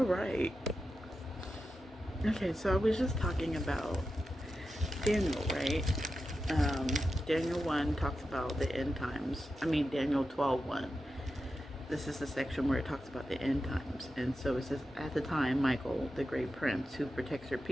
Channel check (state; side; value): normal; both; correlation 0.90